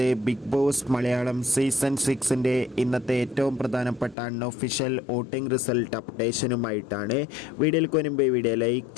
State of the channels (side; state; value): right; drops out; at 4.2 s